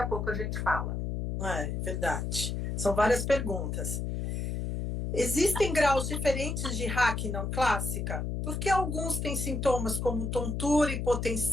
a pouco a gente fala. É verdade, são várias perguntas. Existem graus diferentes de RAC não clássica? Por que alguns têm sintomas como tontura,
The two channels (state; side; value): noise; left; hum, 2 dB below the sound